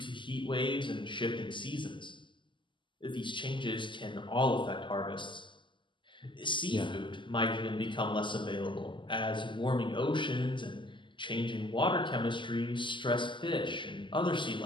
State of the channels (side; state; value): right; late; 0.24 ms